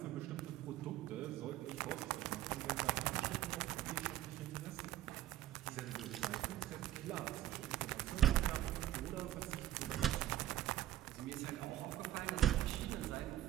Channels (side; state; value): left; quieter; 13.2 dB